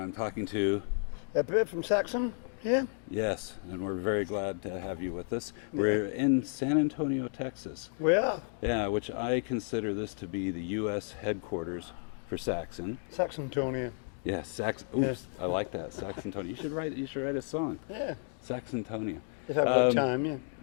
talking to... Biff from Saxon, yeah? Yes, and we're very glad to have you with us. We're in San Antonio, Texas. We are. Yeah, which I consider this to be the U.S. headquarters for Saxon. Saxontonia. Yeah, Oops, I like that, Saxontonia. You should write a song. Yeah. Saxontonia. If I've got time, yeah.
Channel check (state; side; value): silent; right; 56 dB below the other